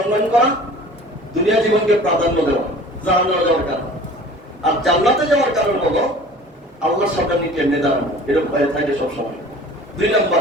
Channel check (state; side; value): normal; both; correlation 0.45